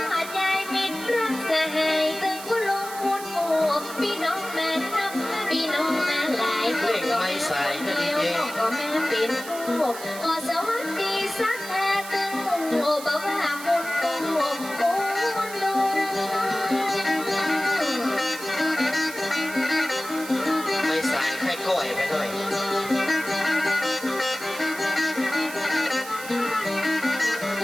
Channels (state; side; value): noise; right; hiss, 12 dB below the sound